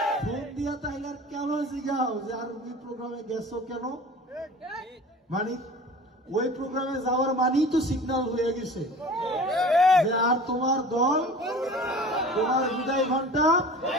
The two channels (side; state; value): both; normal; correlation 0.40